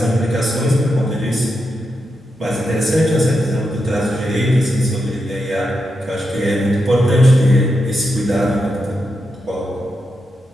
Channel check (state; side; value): normal; both; correlation 0.86